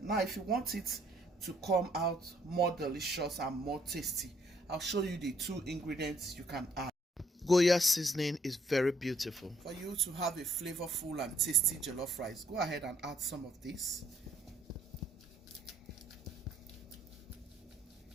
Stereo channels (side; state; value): both; normal; correlation 0.68